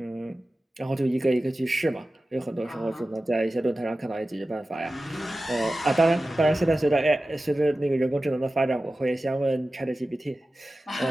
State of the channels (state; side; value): normal; both; correlation 0.95